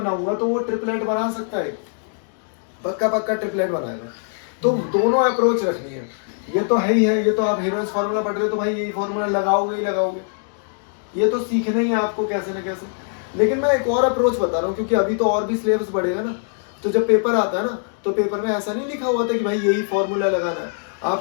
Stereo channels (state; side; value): silent; right; digital silence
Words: तो वो ट्रिपलेट बना सकता है, पक्का ट्रिपलेट बनाएगा, तो दोनों अप्रोच रखनी है, ये तो है ही है, ये तो आप हीरोन्स फार्मूला पढ़ रहे हो तो भाई यही फार्मूला लगाओगे ही लगाओगे, ये तो सीखना ही है आपको कैसे ना कैसे। लेकिन मैं एक और अप्रोच बता रहा हूँ, क्योंकि अभी तो और भी सिलेबस बढ़ेगा ना, तो जब पेपर आता है ना तो पेपर में ऐसा नहीं लिखा हुआ था कि भाई यही फॉर्मूला लगाना है,